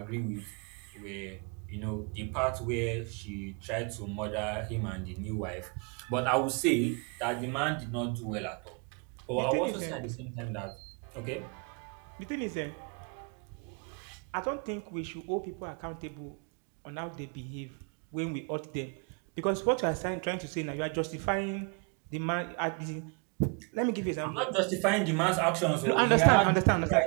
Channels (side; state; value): left; quieter; 34.6 dB